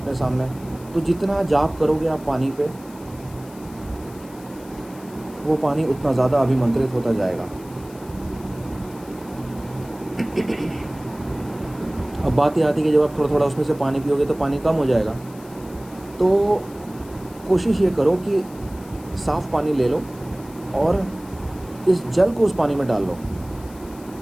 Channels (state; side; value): noise; left; hiss, 23 dB below the sound